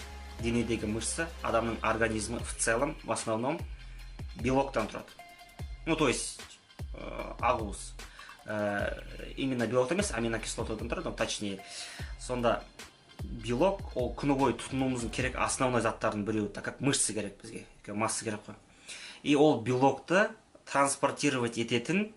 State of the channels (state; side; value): identical; both; correlation 1.00